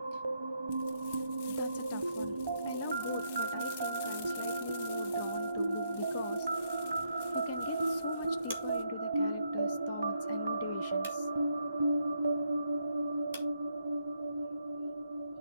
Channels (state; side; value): inverted; both; correlation -0.76